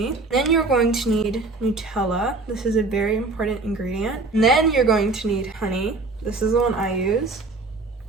Then you're going to need Nutella. This is a very important ingredient. And then you're going to need honey. This is the one I use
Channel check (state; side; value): quieter; left; 3.4 dB